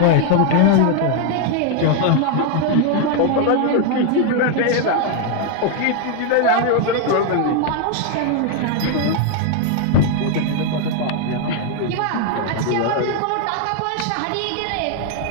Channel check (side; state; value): both; different; correlation 0.00